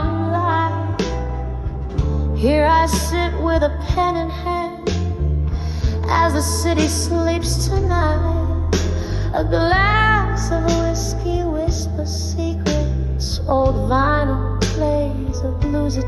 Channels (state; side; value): identical; both; correlation 1.00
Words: light, here I sit with a pen in hand as the city sleeps tonight. A glass of whiskey whispers secrets, old vinyl plays a bluesy